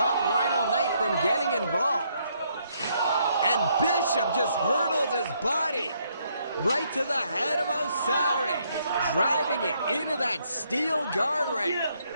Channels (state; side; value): inverted; both; correlation -0.72